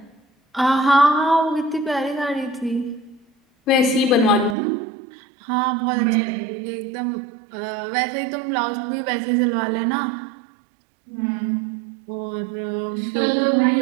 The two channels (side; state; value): left; drops out; at 4.5 s